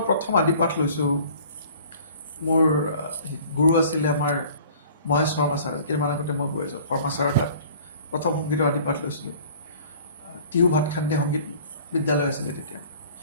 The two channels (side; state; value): both; inverted; correlation -0.49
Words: প্ৰথম আদিপাঠ লৈছোঁ মোৰ গুৰু আছিলে আমাৰ মহেশ শৰ্মা ছাৰ কেইদিনমান আগতে মই গৈ আছোঁ শৰ্মা ছাৰৰ তাত প্ৰথম সংগীতৰ আদিপাঠ লৈছিলোঁ টিহু ভাতখান্দে সংগীত বিদ্যালয় আছিলে তেতিয়া